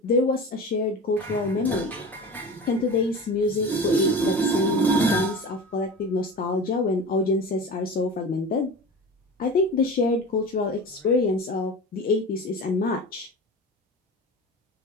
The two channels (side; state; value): both; normal; correlation 0.32